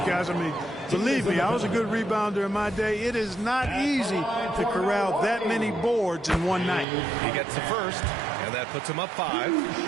guys. I mean, believe me, I was a good rebounder in my day. It is not easy to corral that many boards in one night. He gets the first, and that puts him up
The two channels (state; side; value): drops out; left; at 6.9 s